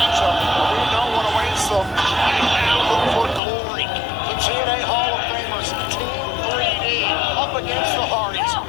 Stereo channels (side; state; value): right; drops out; at 3.4 s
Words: We know what awaits them. And now look for glory. The TNA Hall of Famers, Team 3D, up against the Hardys